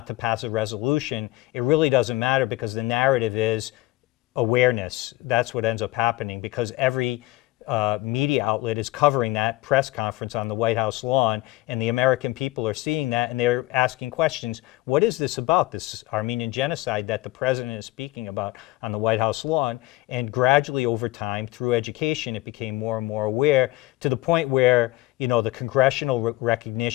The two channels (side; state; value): right; quieter; 18.8 dB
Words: to pass a resolution, it really doesn't matter, because the narrative is awareness. That's what ends up happening, because every media outlet is covering that press conference on the White House lawn, and the American people are seeing that, and they're asking questions. What is this about, this Armenian genocide that the president is speaking about on the White House lawn? And gradually over time, through education, it became more and more aware, to the point where, the congressional